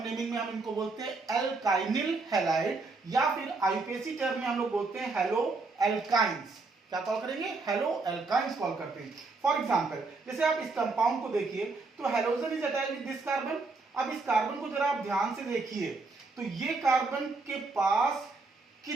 नेमिंग में हम इनको बोलते हैं एल्काइनिल हैलाइड, या फिर आईपीएसी टर्म में हम लोग बोलते हैं हेलो एल्काइंस। क्या कॉल करेंगे, हेलो एल्काइंस कॉल करते हैं। फॉर एग्जांपल जैसे आप इस कंपाउंड को देखिए, तो halogen is attached with this carbon. अब इस कार्बन को जरा आप ध्यान से देखिए, तो ये कार्बन के पास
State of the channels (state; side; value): quieter; left; 3.8 dB